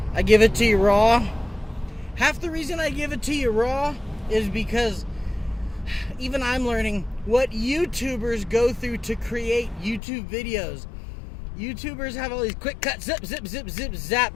I give it to you raw. Half the reason I give it to you raw is because even I'm learning what YouTubers go through to create YouTube videos. YouTubers have all these quick cuts, zip, zip, zip, zip,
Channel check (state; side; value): drops out; right; at 10.0 s